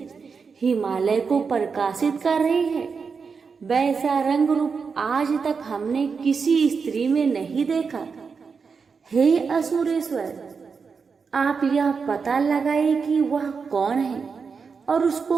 हिमालय को प्रकाशित कर रही है। वैसा रंग रूप आज तक हमने किसी स्त्री में नहीं देखा। हे असुरेश्वर, आप यह पता लगाए कि वह कौन है और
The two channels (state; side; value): quieter; left; 5.4 dB